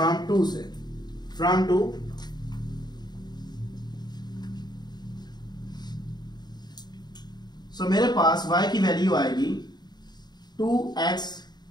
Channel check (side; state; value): right; late; 0.20 ms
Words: 2 से, फ्रॉम 2। सो मेरे पास y की वैल्यू आएगी 2x